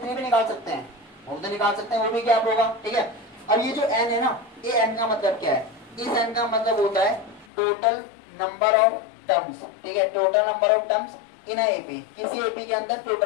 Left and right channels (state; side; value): drops out; right; at 7.5 s